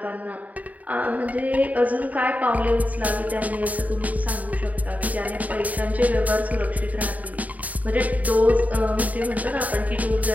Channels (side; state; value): left; late; 0.073 ms